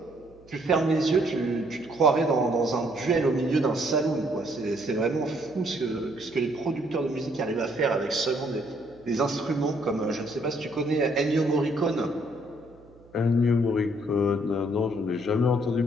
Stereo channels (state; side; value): noise; right; hum, 27 dB below the sound